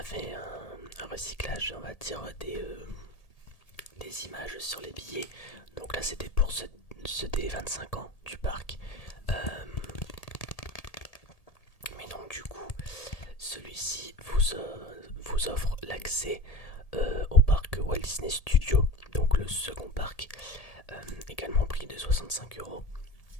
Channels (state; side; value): late; right; 1.8 ms